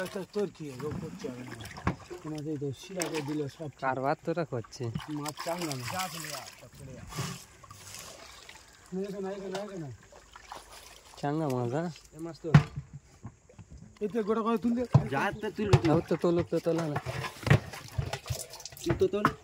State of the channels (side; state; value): both; identical; correlation 1.00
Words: কারবার তোরা করছে মাছ চাঙ্গা চাঙ্গা মাছ হ্যাঁ মাছ তো এতে গোটা করে তুললে তো তোলো তো তোলা না